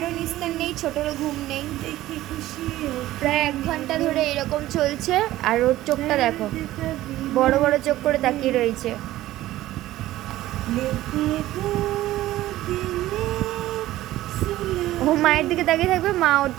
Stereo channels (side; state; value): left; quieter; 15.4 dB